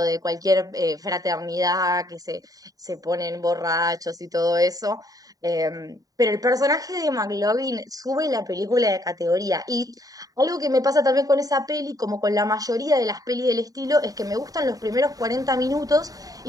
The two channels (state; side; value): late; left; 0.18 ms